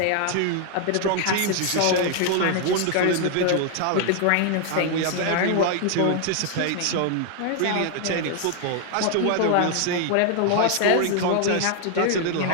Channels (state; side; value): different; both; correlation 0.00